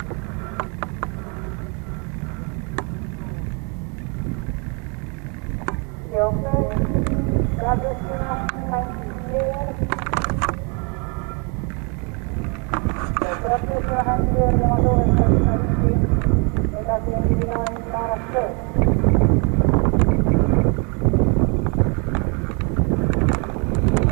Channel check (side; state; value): left; quieter; 33.5 dB